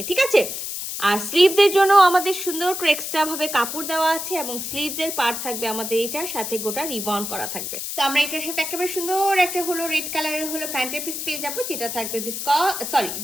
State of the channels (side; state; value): left; noise; hiss, 5 dB below the sound